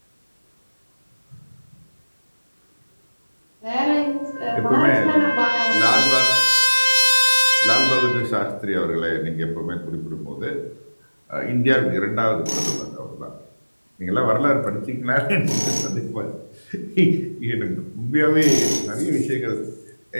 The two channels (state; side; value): inverted; both; correlation -1.00